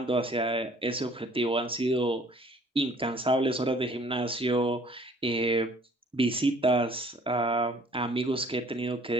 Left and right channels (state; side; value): normal; both; correlation 0.56